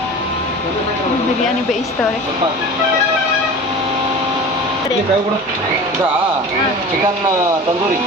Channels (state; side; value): normal; both; correlation 0.37